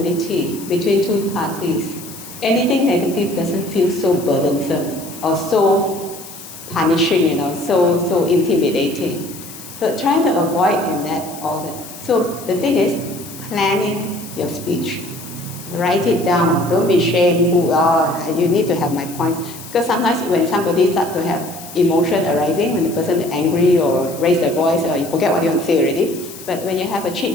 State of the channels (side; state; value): left; noise; hiss, 15 dB below the sound